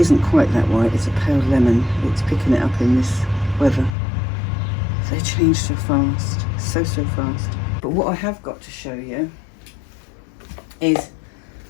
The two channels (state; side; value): drops out; right; at 4.0 s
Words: quite that white, it's a pale lemon. It's picking it up in this weather. They change so fast, so fast. But what I have got to show you is